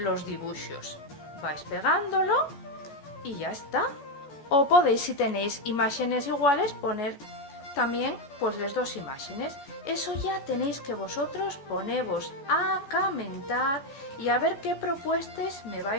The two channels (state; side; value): late; right; 14 ms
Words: dibuixos. Vais pegándolo y ya está. O podéis, si tenéis imágenes iguales, poner también pues las dos imágenes. Eso ya tenéis que vosotros ponevos a comentar y a ver qué propuestas me